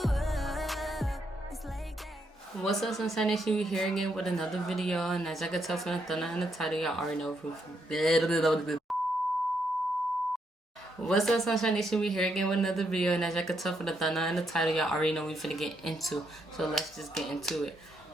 it's like that. What's up, Sunshine Nation? We here again with another video, and as I can tell from the thumbnail and the title, y'all already know who. What's up, Sunshine Nation? We here again with another video, and as I can tell from the thumbnail and the title, y'all already know we finna get into. So let's just get into it.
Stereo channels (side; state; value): both; normal; correlation 0.77